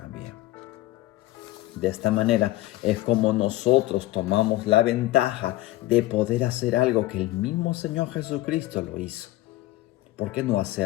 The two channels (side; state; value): right; quieter; 16.8 dB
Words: De esta manera es como nosotros tomamos la ventaja de poder hacer algo que el mismo Señor Jesucristo lo hizo. ¿Por qué no